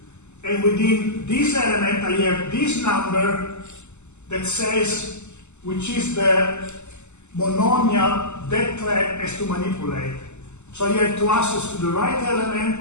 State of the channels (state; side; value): late; right; 0.83 ms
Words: And within this element, I have this number that says which is the monomial that thread has to manipulate. So I have to access to the right